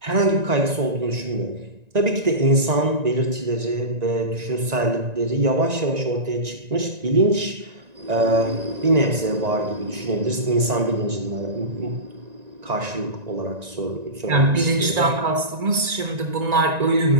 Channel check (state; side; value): late; left; 1.9 ms